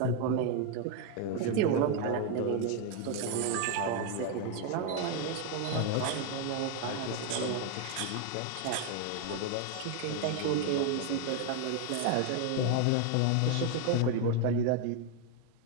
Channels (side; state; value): both; different; correlation 0.01